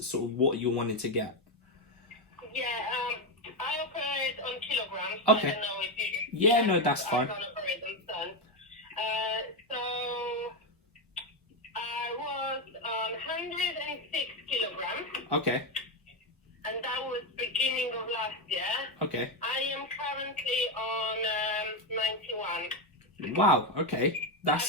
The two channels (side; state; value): both; normal; correlation 0.10